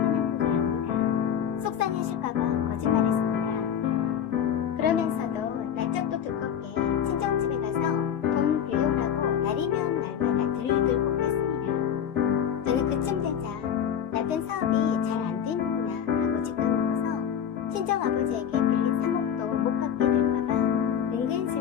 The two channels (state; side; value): quieter; right; 8.8 dB